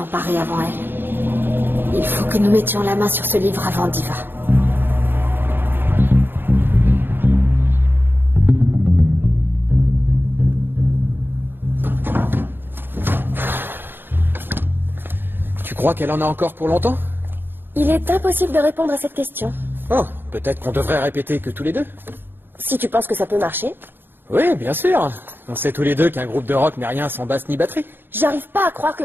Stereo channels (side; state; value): left; late; 0.098 ms